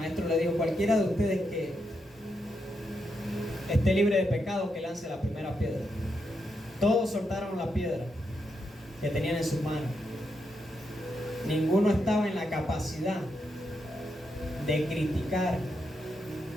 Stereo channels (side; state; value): both; normal; correlation 0.83